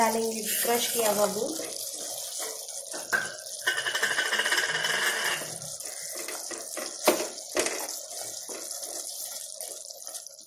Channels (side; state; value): both; identical; correlation 1.00